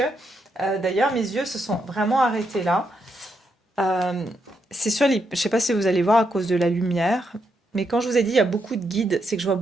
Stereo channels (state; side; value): normal; both; correlation 0.80